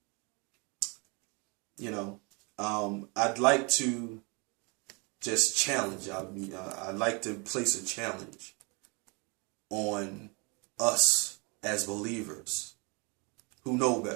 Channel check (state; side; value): quieter; left; 31.1 dB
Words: I'd like to just challenge. I'd like to place a challenge on us as believers who know